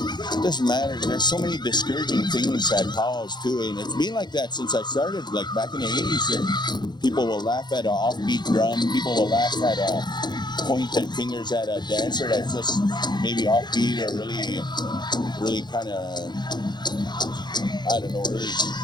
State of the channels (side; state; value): right; late; 0.21 ms